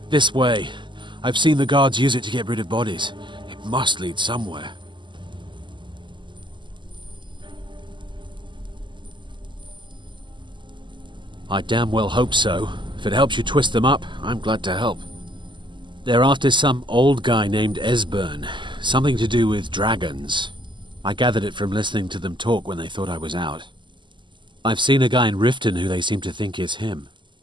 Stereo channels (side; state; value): left; late; 0.23 ms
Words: this way. I've seen the guards use it to get rid of bodies. It must lead somewhere. I damn well hope so. If it helps you twist them up, I'm glad to help. They're after some old guy named Esbern. Something to do with dragons. I gathered it from listening to them talk when they thought I was out. I've seen a guy in Riften who they seem to think is him.